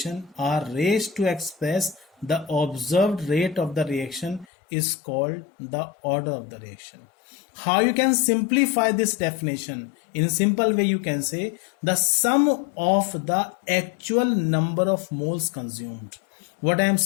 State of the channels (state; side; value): drops out; right; at 4.5 s